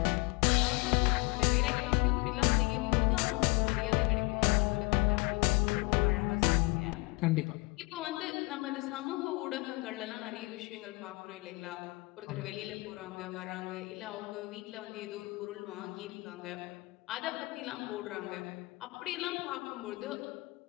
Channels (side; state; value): right; quieter; 25.4 dB